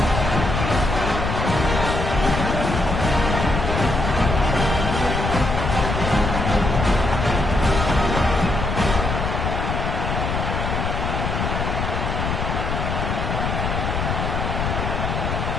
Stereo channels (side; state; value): left; noise; rumble, 1 dB below the sound